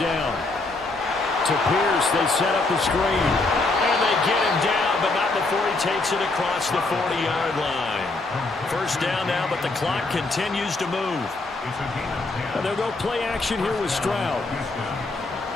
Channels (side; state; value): right; quieter; 3.3 dB